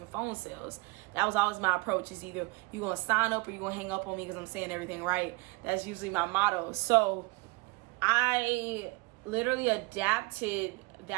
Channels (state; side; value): quieter; left; 25.5 dB